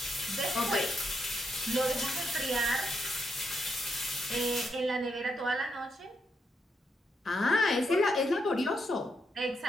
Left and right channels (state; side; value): normal; both; correlation 0.81